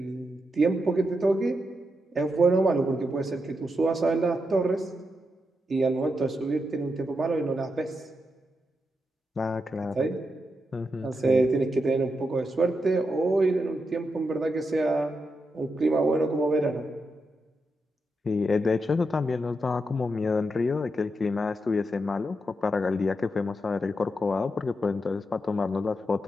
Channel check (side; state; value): both; normal; correlation 0.85